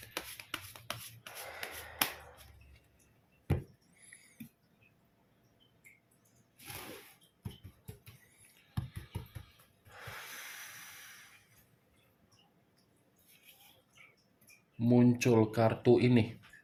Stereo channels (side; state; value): both; identical; correlation 1.00